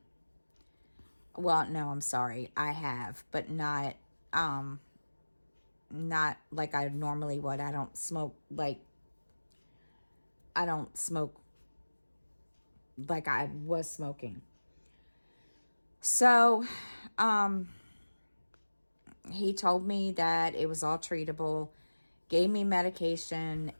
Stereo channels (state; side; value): inverted; both; correlation -1.00